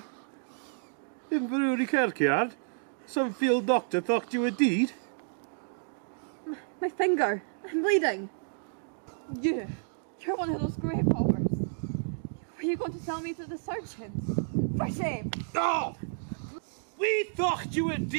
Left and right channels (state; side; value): silent; left; digital silence